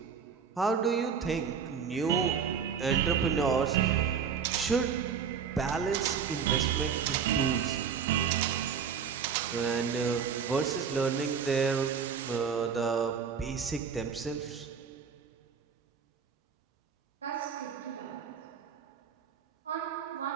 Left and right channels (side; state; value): left; quieter; 6.7 dB